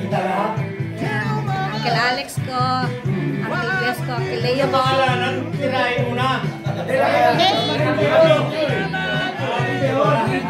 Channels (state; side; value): identical; both; correlation 1.00